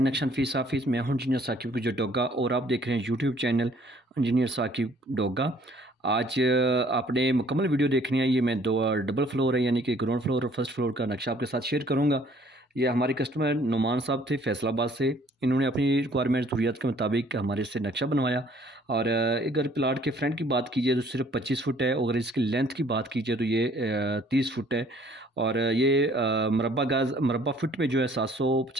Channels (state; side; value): normal; both; correlation 0.59